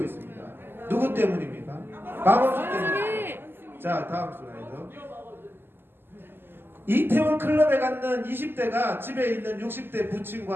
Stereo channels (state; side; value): late; left; 0.10 ms